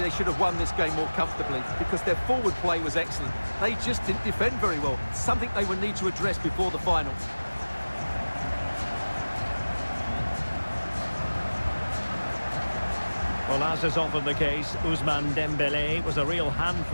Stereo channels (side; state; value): both; inverted; correlation -1.00